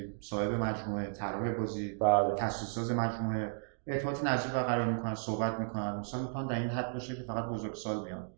صاحب مجموعه، طراح بازی، تاسیس‌ساز مجموعه ارتباط نزدیک برقرار میکنن، صحبت میکنن. مثلا میتونن در این حد باشه که فقط بزرگسال بیان.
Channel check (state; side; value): silent; left; digital silence